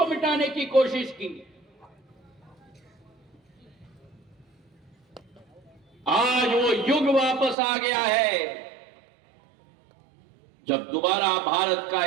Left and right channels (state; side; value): drops out; left; at 7.6 s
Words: मिटाने की कोशिश की। आज वो युग वापस आ गया है जब दोबारा भारत का